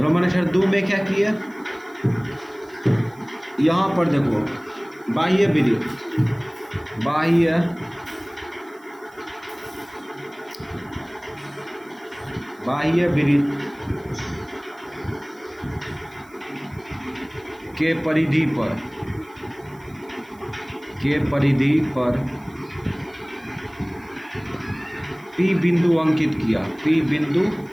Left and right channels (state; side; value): noise; right; hiss, 29 dB below the sound